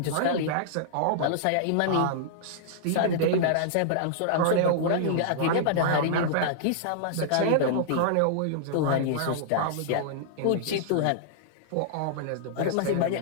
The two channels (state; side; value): different; both; correlation -0.02